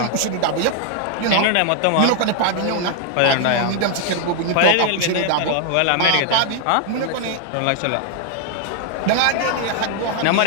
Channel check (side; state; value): both; different; correlation 0.00